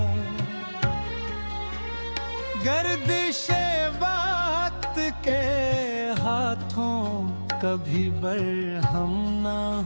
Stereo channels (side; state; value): both; inverted; correlation -1.00